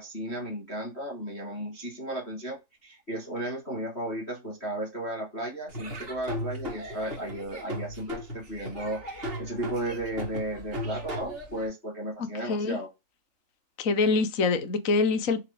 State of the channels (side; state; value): right; late; 3.9 ms